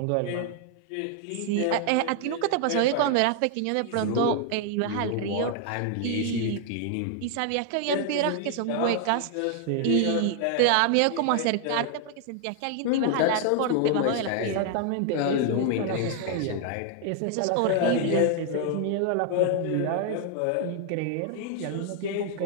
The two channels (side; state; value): both; different; correlation 0.00